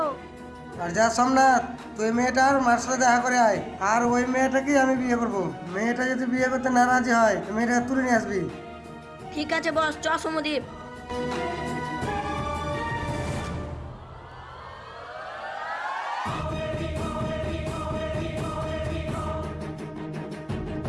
আর যা সোমনাথ, তুই মেয়েটার মার সাথে দেখা করে আয়, আর ওই মেয়েটাকেই আমি বিয়ে করবো। মেয়েটা যদি বিয়ে করতে না রাজি হয়, মেয়েটাকে তুলে নিয়ে আসবি। ঠিক আছে বস, চ সমদীপ।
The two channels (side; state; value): both; identical; correlation 1.00